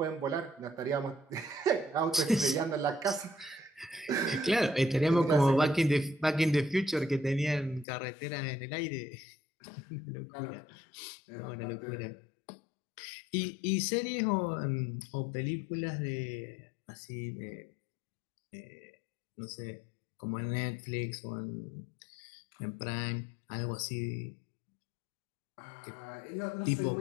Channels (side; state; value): right; drops out; at 7.9 s